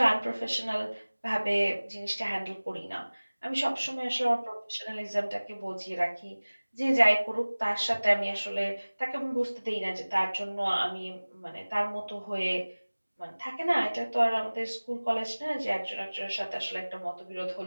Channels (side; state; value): both; inverted; correlation -1.00